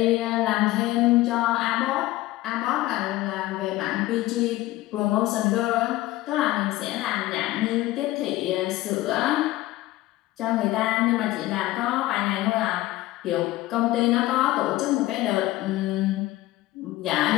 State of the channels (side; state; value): right; quieter; 17.1 dB